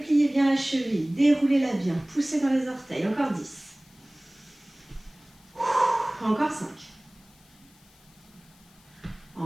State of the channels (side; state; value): left; noise; hiss, 29 dB below the sound